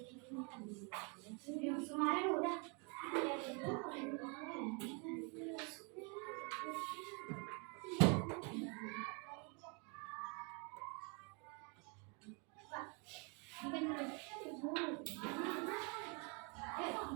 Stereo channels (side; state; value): left; quieter; 34.4 dB